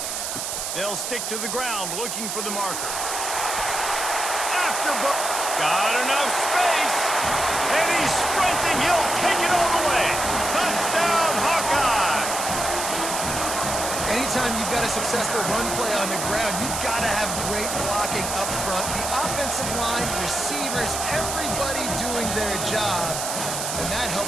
They'll stick to the ground looking for the marker. Got enough space. And he's sprinting. He'll take it all the way. Touchdown, Hawkeye. Anytime you've got a successful run play on the ground, you've got to have great blocking up front. The offensive line, receivers, everybody doing their job. And that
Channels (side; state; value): right; noise; hiss, 3 dB below the sound